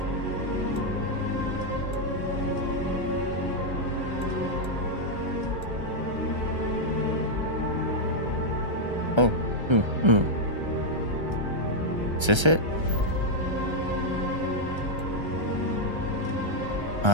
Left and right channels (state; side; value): late; left; 1.3 ms